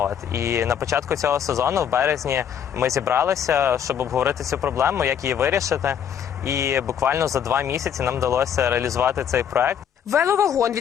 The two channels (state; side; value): quieter; right; 8.6 dB